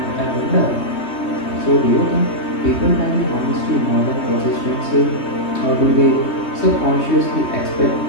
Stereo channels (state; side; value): late; right; 3.2 ms